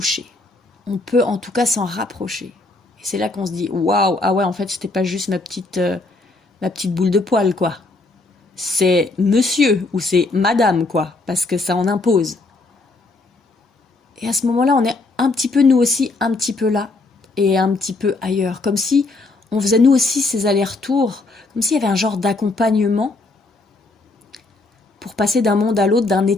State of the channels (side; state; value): right; quieter; 3.3 dB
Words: On peut en tout cas s'en rapprocher. Et c'est là qu'on se dit, waouh, ah ouais, en fait, c'était pas juste ma petite boule de poil, quoi. C'est monsieur ou c'est madame, quoi, parce que ça en impose. Et à ce moment-là, on est un petit peu, nous aussi, un petit peu là et un petit peu ailleurs. Comme si on faisait nous aussi ces allers-retours, comme s'il y avait un genre d'accompagnement pour passer d'un monde à l'autre, d'un